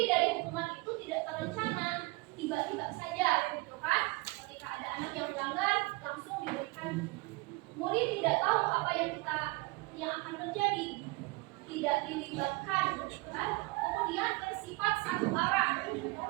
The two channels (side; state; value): left; quieter; 24.7 dB